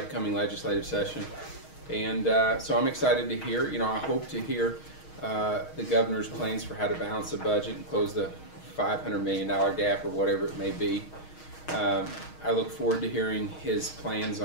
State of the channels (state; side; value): late; right; 6.4 ms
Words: legislative session. And so I'm excited to hear, I hope to hear the governor's plans for how to balance the budget and close the $500 million gap or whatever it may be. I look forward to hearing his plans